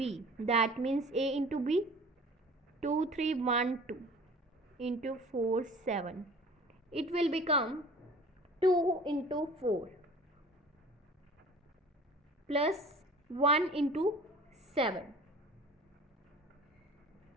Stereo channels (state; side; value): normal; both; correlation 0.45